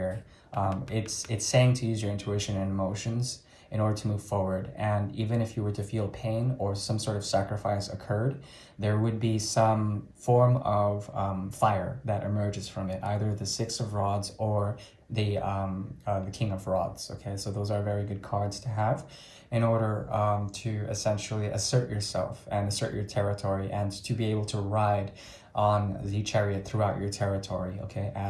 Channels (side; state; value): both; identical; correlation 1.00